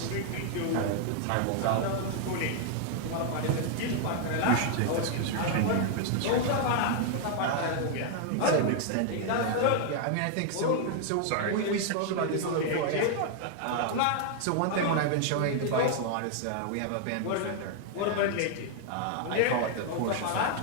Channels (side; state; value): both; different; correlation 0.00